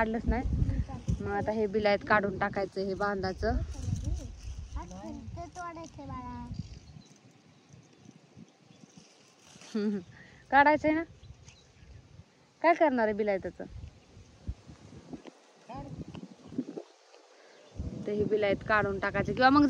नाही. मग आता हे बिलायत काढून टाकायचं, हे बांधाचं. काढायचंय ना. काय करणार आहे बिलायताचं? ते हे बिलायत काढून टाकायचं किंवा मग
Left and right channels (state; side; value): identical; both; correlation 1.00